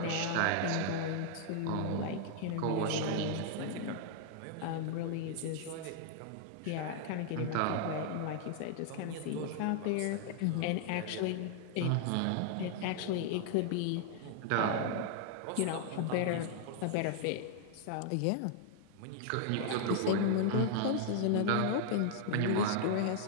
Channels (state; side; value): different; both; correlation -0.01